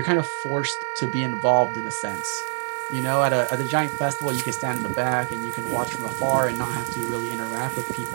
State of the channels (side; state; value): left; silent; 62 dB below the other